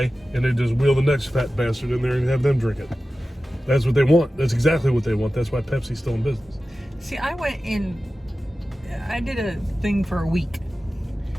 And they just wheel the next fat bastard in there and have them drink it. That's what they want. That's exactly what they want. That's why Pepsi's still in business. See, I did a thing for a week.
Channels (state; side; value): normal; both; correlation 0.95